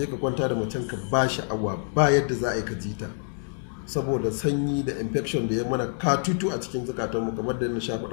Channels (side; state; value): right; silent; 60 dB below the other